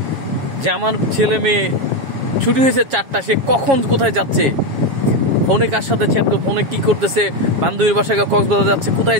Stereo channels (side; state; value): left; late; 7.3 ms